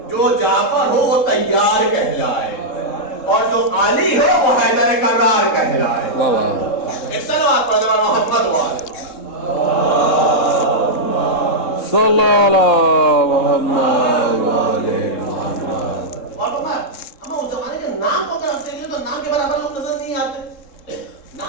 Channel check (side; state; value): right; late; 3.7 ms